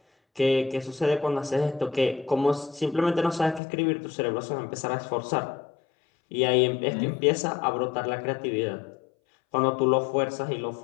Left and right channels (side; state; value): right; drops out; at 3.6 s